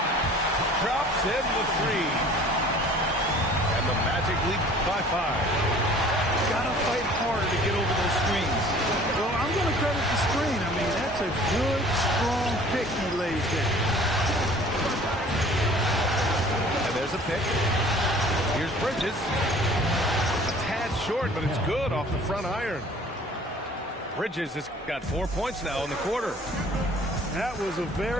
Drops in the 3. And the Magic lead by 5. Gotta fight harder to get over those screens. Well, I'm I'm going to credit the screen. I mean, that's a good, strong pick he lays there. And there's a pick. Here's Bridges. A tad short, but it's good off the front iron. Bridges has got 4 points now in the quarter. That was a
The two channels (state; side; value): normal; both; correlation 0.50